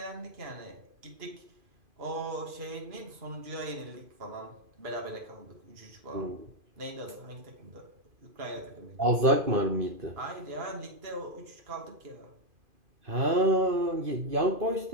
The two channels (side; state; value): left; late; 2.5 ms